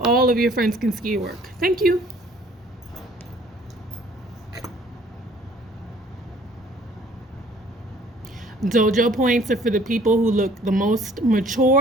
of your friends can see your work. Thank you. Dojo points are for the people who look the most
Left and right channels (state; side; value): normal; both; correlation 0.56